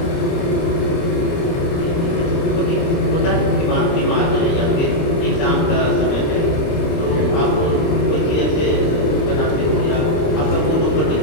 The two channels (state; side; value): late; right; 29 ms